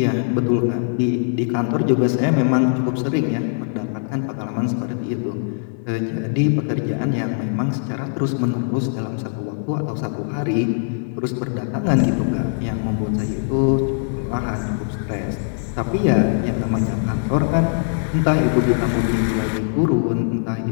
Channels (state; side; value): silent; right; 65 dB below the other